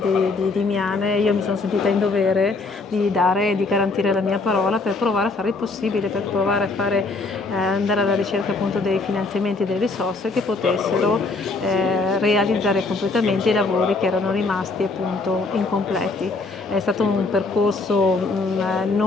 Miane. Io mi sono sentita in dovere di dare e di garantire la mia parola per provare a fare il possibile, per provare a andare alla ricerca appunto dei finanziamenti e delle risorse che potessero realizzare completamente i lavori che erano rimasti appunto incompleti. È stato un percorso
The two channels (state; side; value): quieter; right; 3.6 dB